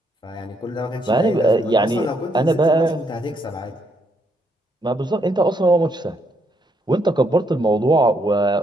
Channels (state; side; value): normal; both; correlation 0.74